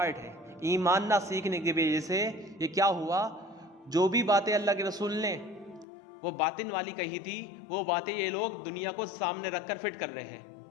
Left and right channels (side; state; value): right; drops out; at 5.9 s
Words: ہے۔ ایمان نہ سیکھنے کی وجہ سے یہ کیا ہوا، جو بھی باتیں اللہ کے رسول نے وہ باطن والی کہی تھی، وہ باتیں یہ لوگ دنیا کو سامنے رکھ کر فٹ کر رہے ہیں